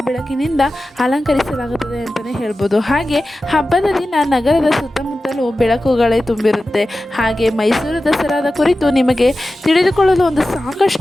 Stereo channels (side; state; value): both; normal; correlation 0.94